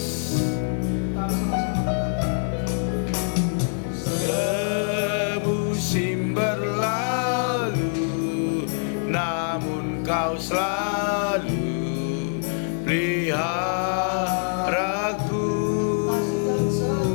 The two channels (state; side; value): silent; right; 58 dB below the other